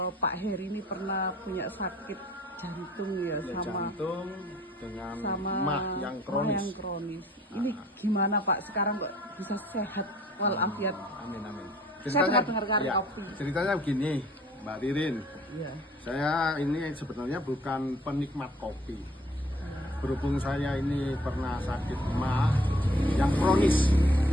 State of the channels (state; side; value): normal; both; correlation 0.55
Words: Pak Heri ini pernah punya sakit jantung ya, Jantung dengan sama mah yang kronis. Ini gimana Pak? Sekarang kok bisa sehat walafiat? Amin amin. Saya pernah dengarkan kopi. Ceritanya begini, Mbak Ririn. Iya. Saya ini sebenarnya bukan penikmat kopi. Berhubung saya ini pernah sakit mah yang kronis.